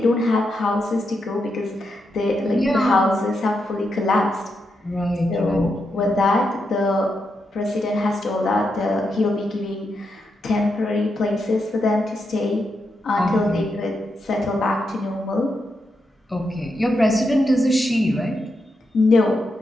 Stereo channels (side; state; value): both; normal; correlation 0.84